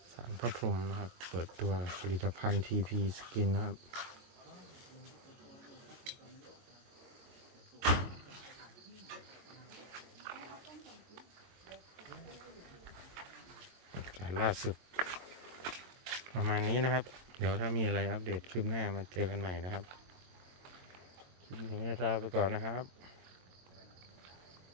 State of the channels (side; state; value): left; late; 22 ms